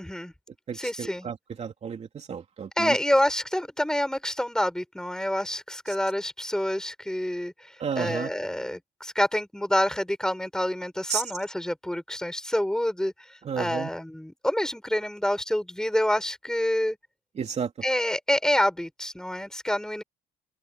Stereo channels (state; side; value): normal; both; correlation 0.92